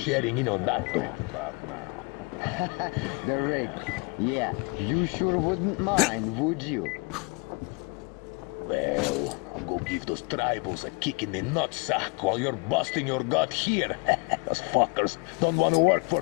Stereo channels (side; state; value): right; quieter; 32.1 dB